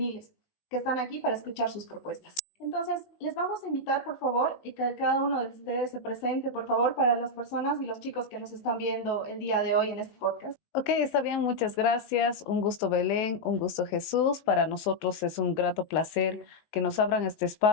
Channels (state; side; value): late; right; 19 ms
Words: que están aquí para escuchar sus propuestas. Entonces, les vamos a invitar, por favor, y que cada uno de ustedes se presente, por favor, para las personas y los chicos que nos están viendo el día de hoy en este podcast. Ok, está bien, muchas gracias. Un gusto, Belén, un gusto, Jesús. Para nosotros es un grato placer que nos abran este